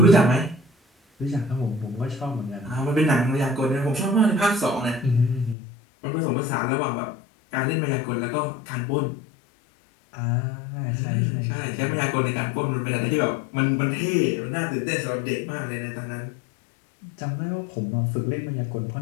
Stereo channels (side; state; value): right; drops out; at 5.6 s